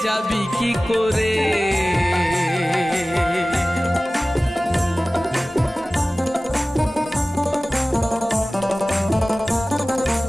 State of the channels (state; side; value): normal; both; correlation 0.97